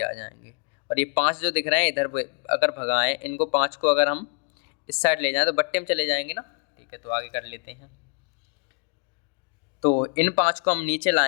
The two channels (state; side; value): quieter; right; 39.9 dB